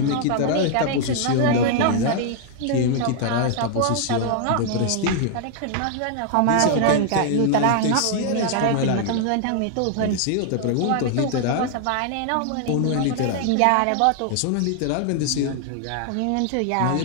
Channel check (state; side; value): different; both; correlation 0.00